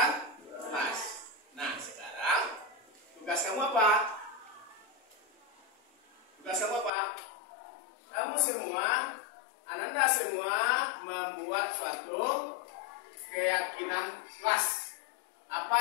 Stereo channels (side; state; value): right; drops out; at 6.9 s